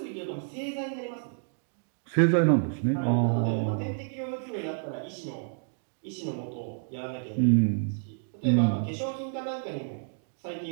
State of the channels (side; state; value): left; silent; digital silence